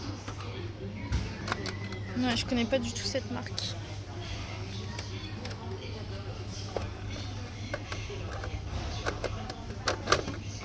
Ouais, je connais pas du tout cette marque.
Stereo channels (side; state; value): both; identical; correlation 1.00